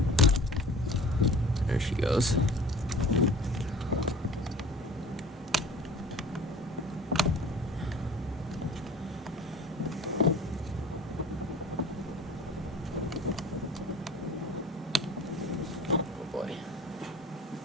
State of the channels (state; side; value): normal; both; correlation 0.44